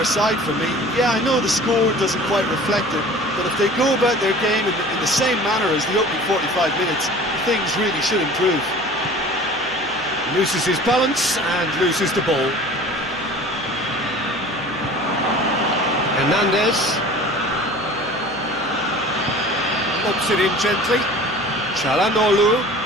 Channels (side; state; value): left; noise; hum, 25 dB below the sound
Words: side for me. Yeah, I know the score doesn't quite reflect it, but if they go about their game in the same manner as the opening 45 minutes, things really should improve. Loses his balance and loses the ball. Hernandez. Lobs it in gently. Çalhanoğlu.